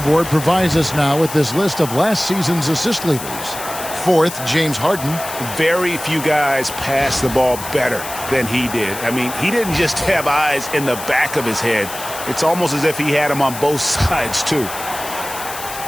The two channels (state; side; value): noise; left; hiss, 10 dB below the sound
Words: provides us now with this list of last season's assist leaders. 4th, James Harden. Very few guys pass the ball better than he did. I mean, he didn't just have eyes in the back of his head. It's almost as if he had them on both sides, too.